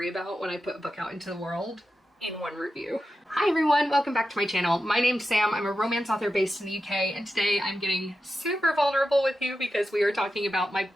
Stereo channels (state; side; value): normal; both; correlation 0.90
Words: about when I put a book out into the world in one review. Hi everyone, welcome back to my channel. My name's Sam, I'm a romance author based in the UK, and today I'm getting super vulnerable with you because we are talking about my